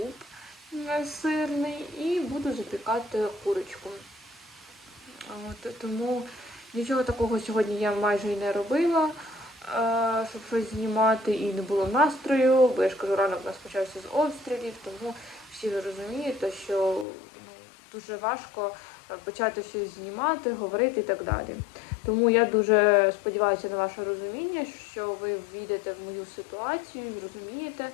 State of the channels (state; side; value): drops out; right; at 17.1 s